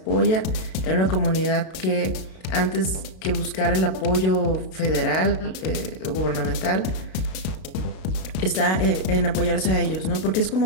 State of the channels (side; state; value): right; late; 32 ms